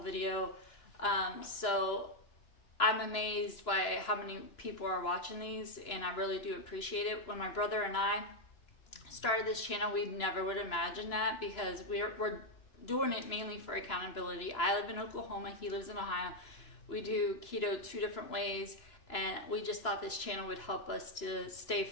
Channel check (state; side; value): late; right; 2.9 ms